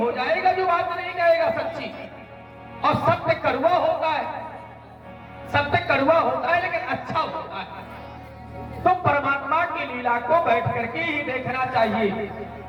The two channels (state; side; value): identical; both; correlation 1.00